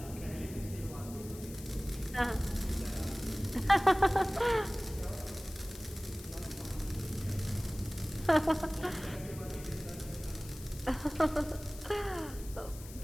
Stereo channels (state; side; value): noise; left; hiss, 16 dB below the sound